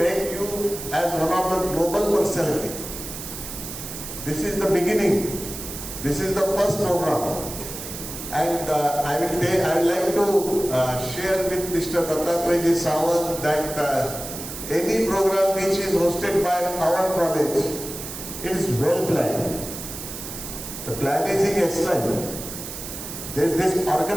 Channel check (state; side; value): noise; right; hiss, 9 dB below the sound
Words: you as one of the global personality. This is the beginning. This is the first program. And I would like to share with Mr. Dattatreya Sawant that any program which is hosted by our college, it is well planned. The planning is excellent. There is this